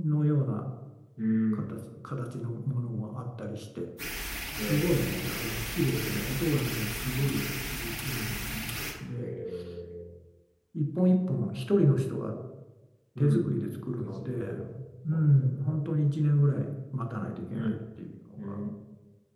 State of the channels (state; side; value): identical; both; correlation 1.00